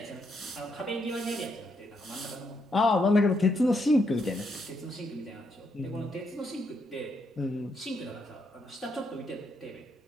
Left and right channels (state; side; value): normal; both; correlation 0.77